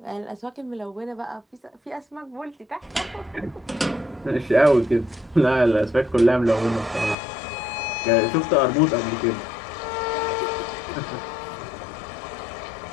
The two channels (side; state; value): right; drops out; at 7.2 s